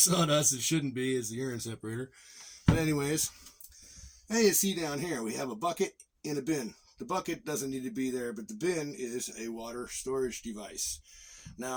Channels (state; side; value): identical; both; correlation 1.00